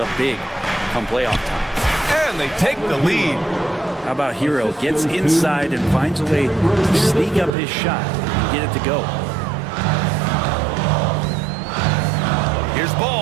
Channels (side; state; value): left; drops out; at 7.6 s